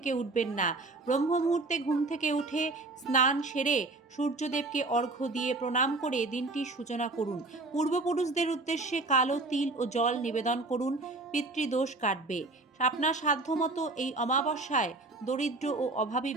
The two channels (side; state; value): left; quieter; 3.2 dB